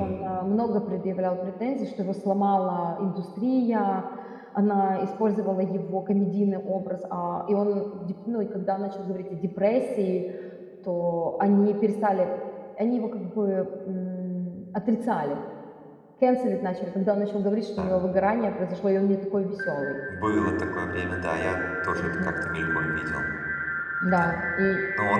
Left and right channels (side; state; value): both; identical; correlation 1.00